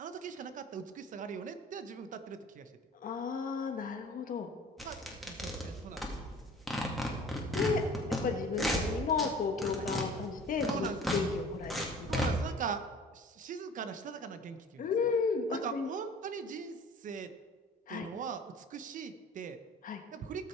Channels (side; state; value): both; normal; correlation 0.46